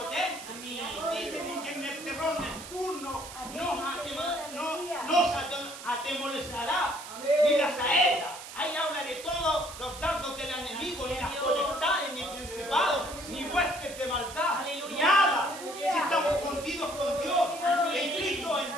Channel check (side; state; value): right; noise; hiss, 13 dB below the sound